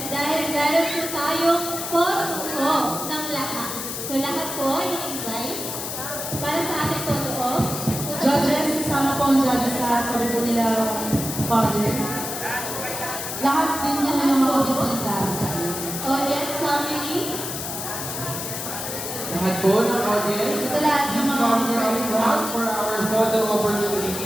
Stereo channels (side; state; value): left; noise; hiss, 6 dB below the sound